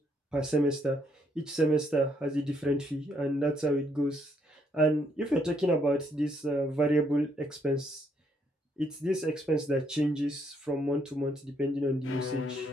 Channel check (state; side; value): normal; both; correlation 0.72